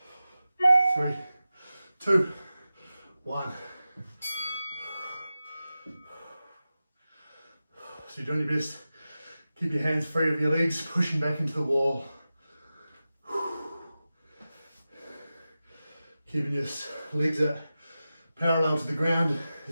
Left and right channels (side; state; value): both; inverted; correlation -0.94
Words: 3, 2, 1. So you're doing your best. Keep your hands free of your legs, pushing back into the wall. Keeping your legs at parallel to the ground